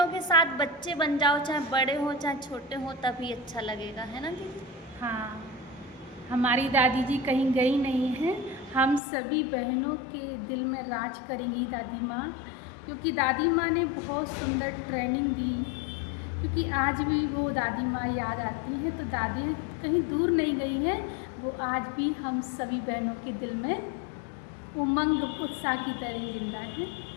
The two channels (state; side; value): drops out; right; at 9.0 s